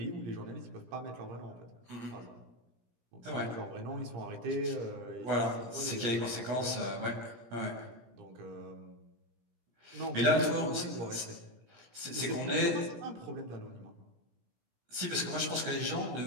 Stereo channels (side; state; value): left; late; 17 ms